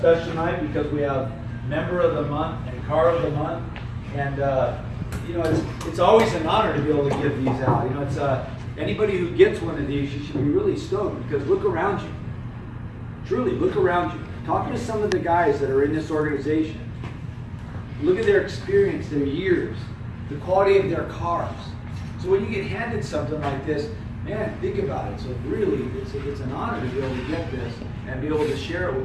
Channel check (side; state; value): both; identical; correlation 1.00